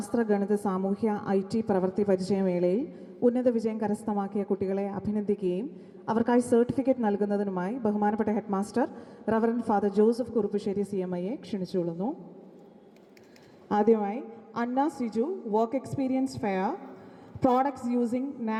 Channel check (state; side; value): identical; both; correlation 1.00